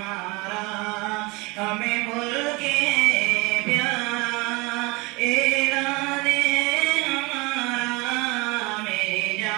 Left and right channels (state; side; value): quieter; left; 25.5 dB